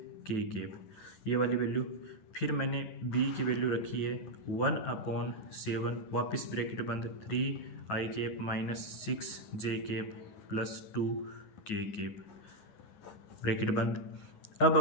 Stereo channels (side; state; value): right; late; 9.4 ms